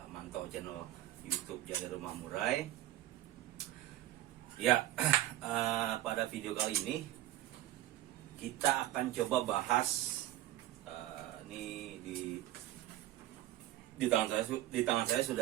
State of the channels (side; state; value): left; quieter; 14.7 dB